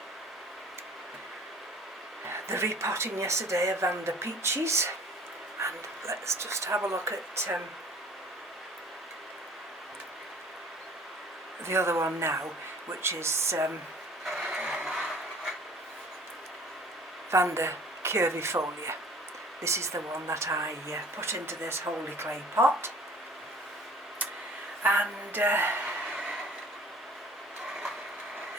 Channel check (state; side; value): normal; both; correlation 0.49